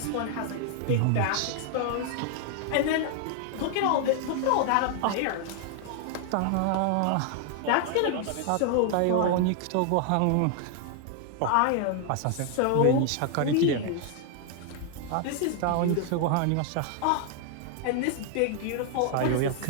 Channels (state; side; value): different; both; correlation 0.00